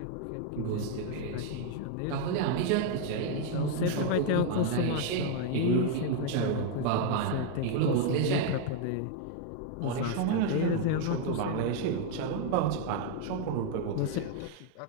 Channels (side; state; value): both; different; correlation 0.00